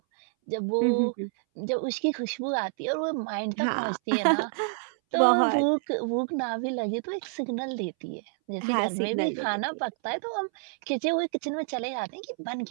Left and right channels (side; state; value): left; silent; 59 dB below the other